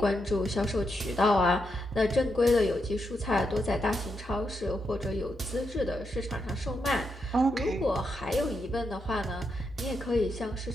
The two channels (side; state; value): both; normal; correlation 0.83